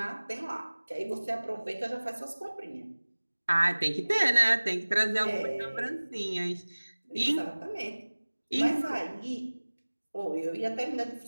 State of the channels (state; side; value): inverted; both; correlation -1.00